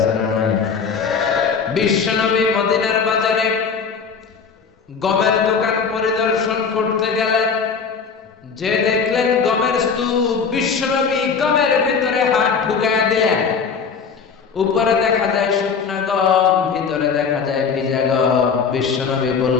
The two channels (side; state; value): right; quieter; 5.8 dB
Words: না নাই? বিশ্বনবী মদিনার বাজারে গমের দোকান পরিদর্শন করতে গেলেন, যে দেখলেন গমের স্তূপ। বিশ্বনবী গমের ভিতরে হাত ঢুকায় দিলেন। উপরে দেখা যায় শুকনা গম, ভিতরে দেখা যায় ভিজা গম। বিশ্বনবী